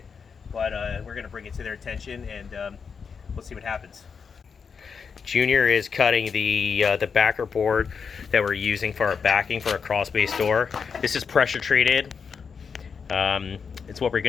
But we're gonna bring it to their attention, and we'll see what happens. Junior is cutting the backer board that we're using for our backing for a crawl space door. This is pressure treated. It's what we're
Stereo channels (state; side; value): quieter; right; 6.0 dB